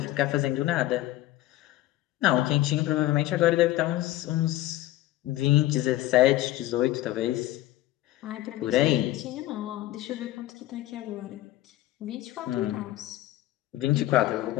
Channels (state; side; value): quieter; right; 15.7 dB